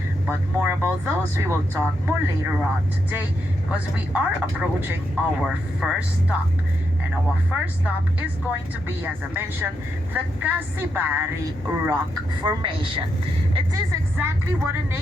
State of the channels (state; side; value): normal; both; correlation 0.82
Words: But more about those we will talk more later on today, because we are approaching our first stop. And our first stop is going to be, as I mentioned, the Casibari Rock Formation. It is exactly what the